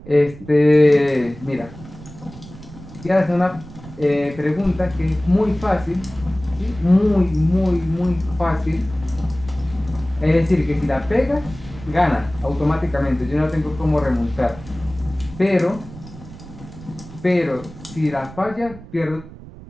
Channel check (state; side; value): noise; right; rumble, 17 dB below the sound